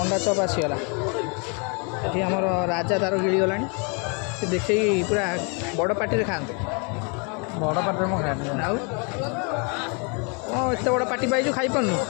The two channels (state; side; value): quieter; right; 35.3 dB